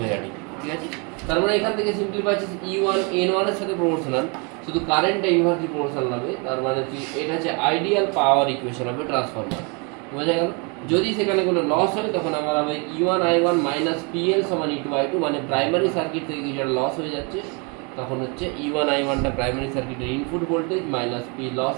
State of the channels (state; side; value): quieter; left; 32.8 dB